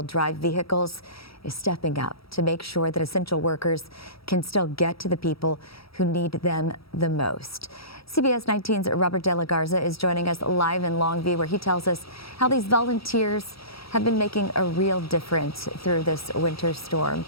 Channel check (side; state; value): right; late; 0.76 ms